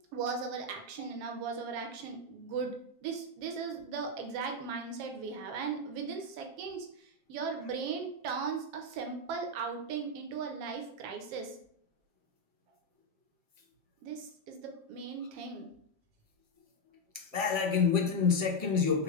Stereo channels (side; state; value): left; late; 7.4 ms